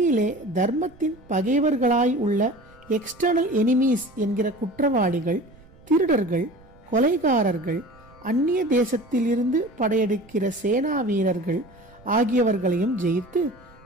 தர்மத்தின் பகைவர்களாய் உள்ள எக்ஸ்டர்னல் எனிமீஸ் என்கிற குற்றவாளிகள், திருடர்கள், கொலைகாரர்கள், அந்நிய தேசத்திலிருந்து படையெடுக்கிற சேனா வீரர்கள் ஆகியவர்களையும் ஜெயித்து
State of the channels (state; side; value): noise; right; rumble, 25 dB below the sound